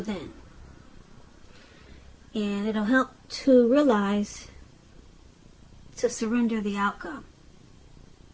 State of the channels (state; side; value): identical; both; correlation 1.00